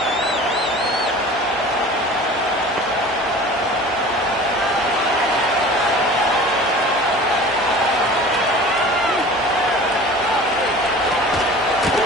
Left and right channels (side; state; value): both; normal; correlation 0.41